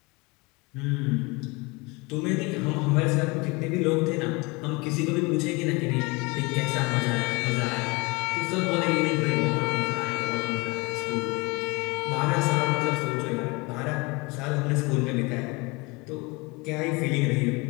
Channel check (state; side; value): quieter; right; 26.2 dB